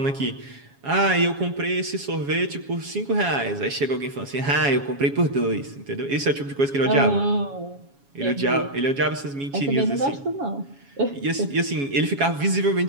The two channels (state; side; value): late; left; 7.2 ms